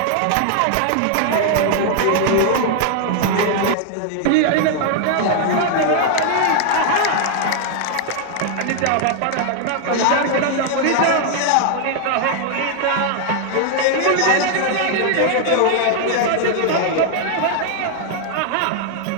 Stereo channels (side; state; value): both; different; correlation 0.00